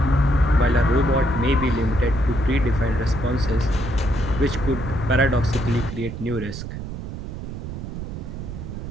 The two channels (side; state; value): right; noise; rumble, 8 dB below the sound